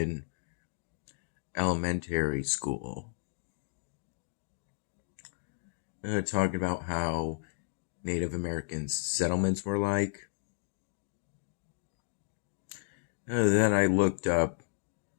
elementary school, talking about how Native American settlements were like. Then I looked up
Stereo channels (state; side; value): silent; right; 56 dB below the other